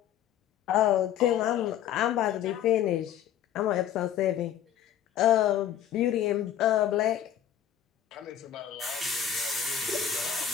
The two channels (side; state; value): right; quieter; 10.2 dB